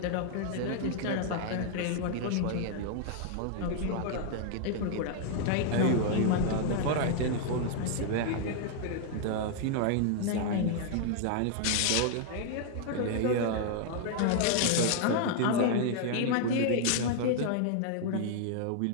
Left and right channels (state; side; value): different; both; correlation 0.00